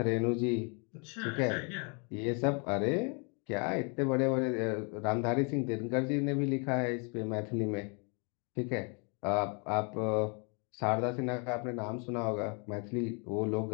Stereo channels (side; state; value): right; quieter; 35.4 dB